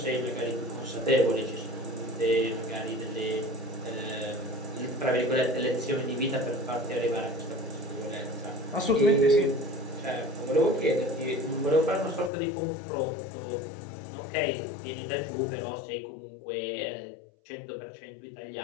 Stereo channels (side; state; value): right; drops out; at 12.3 s